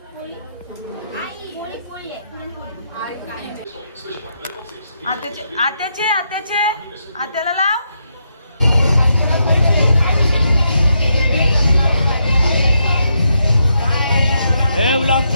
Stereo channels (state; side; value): inverted; both; correlation -0.80